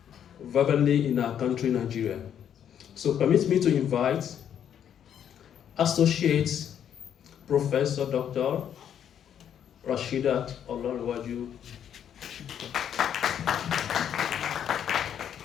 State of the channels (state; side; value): quieter; right; 9.2 dB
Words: verbally in our country, Nigeria. So permit me to invite Associate Professor Dr. Rashidah Olanrewaju.